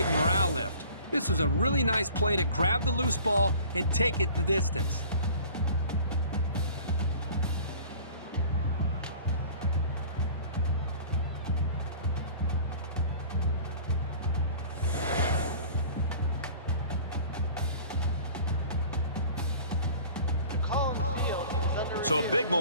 morale lift. This was a really nice play to grab the loose ball and take it the distance. So a big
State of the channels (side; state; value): both; inverted; correlation -0.46